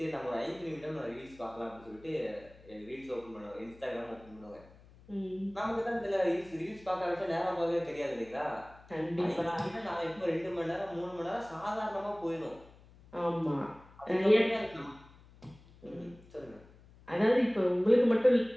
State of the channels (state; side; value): noise; left; hum, 24 dB below the sound